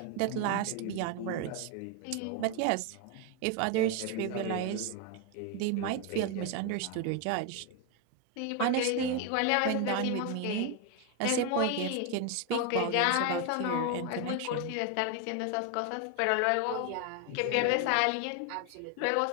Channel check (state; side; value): different; both; correlation 0.01